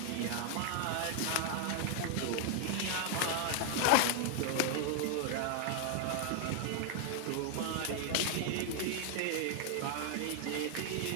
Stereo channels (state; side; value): different; both; correlation 0.00